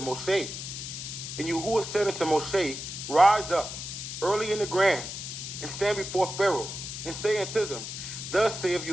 And Yahuwah said unto Moshe, rise up early in the grand, and stand before Pharaoh, and say unto them, thus saith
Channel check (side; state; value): left; noise; hiss, 7 dB below the sound